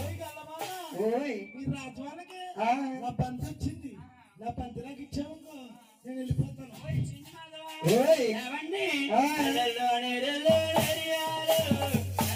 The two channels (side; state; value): both; identical; correlation 1.00